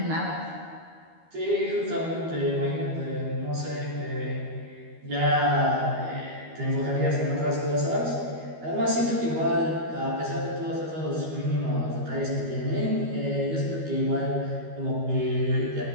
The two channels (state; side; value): late; left; 12 ms